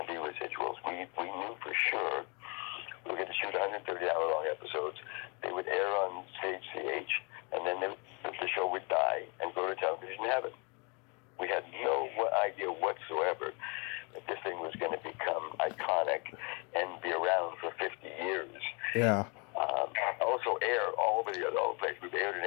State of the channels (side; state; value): right; quieter; 32.6 dB